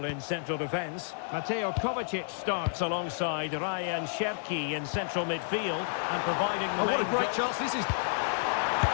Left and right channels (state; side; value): silent; right; 57 dB below the other